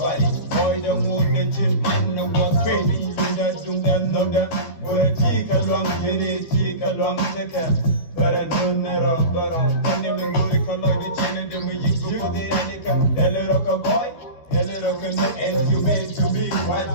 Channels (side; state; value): right; late; 12 ms